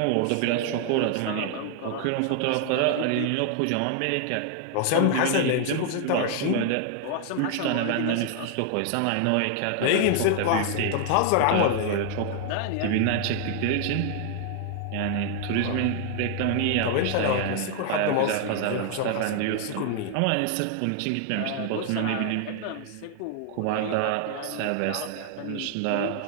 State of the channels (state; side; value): different; both; correlation 0.00